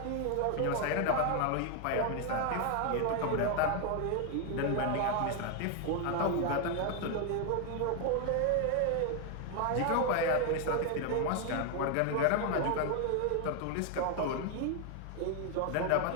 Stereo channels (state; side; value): different; both; correlation 0.01